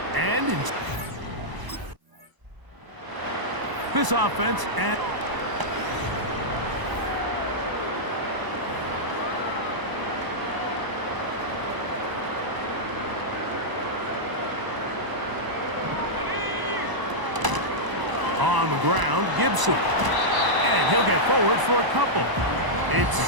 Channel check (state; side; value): late; left; 1.0 ms